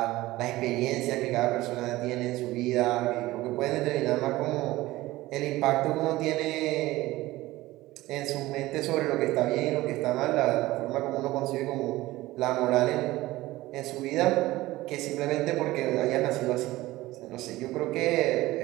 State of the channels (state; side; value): quieter; left; 17.9 dB